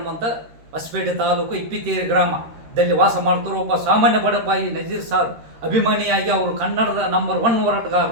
ಹೊಸಪೇಟೆ ತಾಲೂಕು ಇಪ್ಪಿತೇರಿ ಗ್ರಾಮದಲ್ಲಿ ವಾಸ ಮಾಡ್ತಿರೋ ಒಬ್ಬ ಸಾಮಾನ್ಯ ಬಡಪಾಯಿ ನಜೀರ್ ಸಾರ್ ಅಭಿಮಾನಿಯಾಗಿ ಅವರು ಕನ್ನಡದ ನಂಬರ್ 1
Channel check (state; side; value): late; left; 13 ms